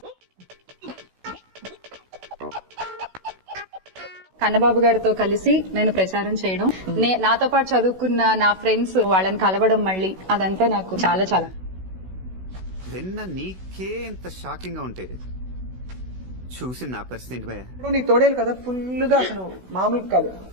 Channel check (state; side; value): late; left; 16 ms